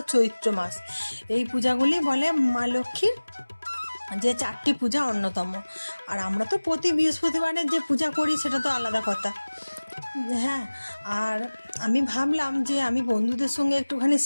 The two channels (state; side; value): inverted; both; correlation -1.00